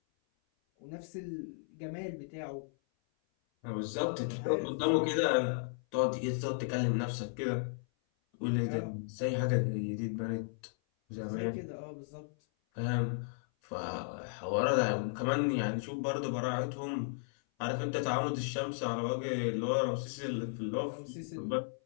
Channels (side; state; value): right; silent; 55 dB below the other